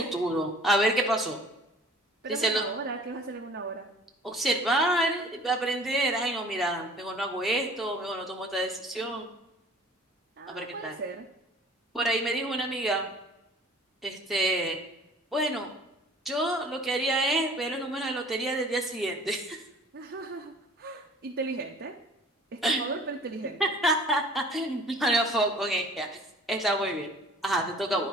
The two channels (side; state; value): both; normal; correlation 0.48